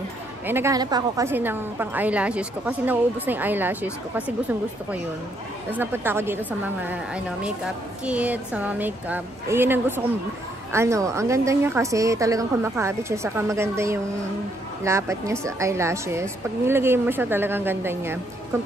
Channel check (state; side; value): normal; both; correlation 0.72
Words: Eh, naghahanap ako kasi ng pang eyelashes ko. Kasi nauubos na yung eyelashes ko. Kasi gustong-gusto ko yun. Tapos napunta ako dito sa mga, makeup kit, sa mga makeup. Eh, yun ang gusto kong, ang ganda niya kasi talagang kumakabit siya. Saka maganda yung lapat niya sa eyelashes. Pag nilagay mo siya, talagang ganda niya.